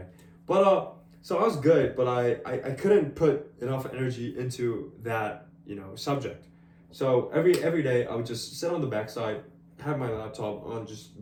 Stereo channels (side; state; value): both; identical; correlation 1.00